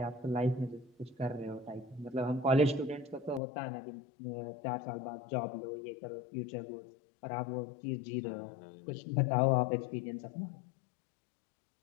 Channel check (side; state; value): right; drops out; at 3.4 s